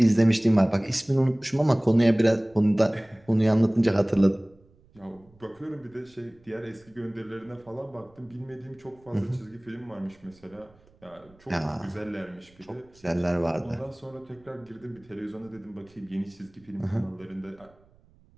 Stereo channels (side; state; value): right; noise; rumble, 30 dB below the sound